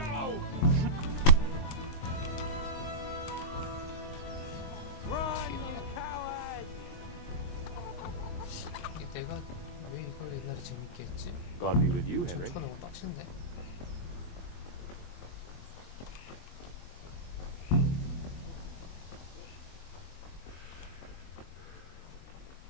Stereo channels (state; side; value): late; right; 23 ms